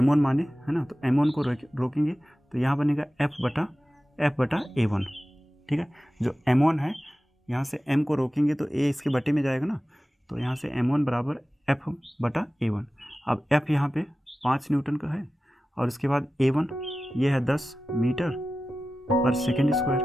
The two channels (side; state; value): both; normal; correlation 0.95